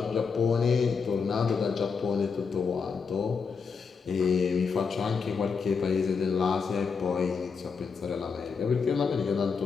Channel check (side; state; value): right; quieter; 5.5 dB